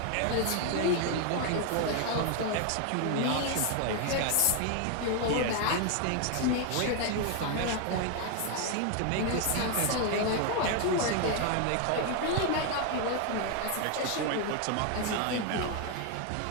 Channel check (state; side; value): different; both; correlation 0.01